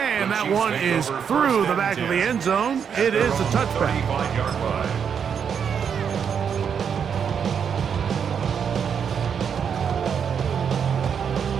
that one is through the back of the end zone. It is a touchback. 35-yard line.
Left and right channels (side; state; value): left; quieter; 7.3 dB